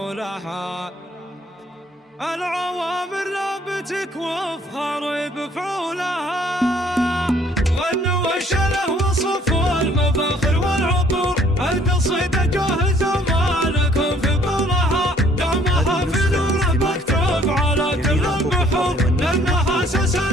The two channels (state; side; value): normal; both; correlation 0.60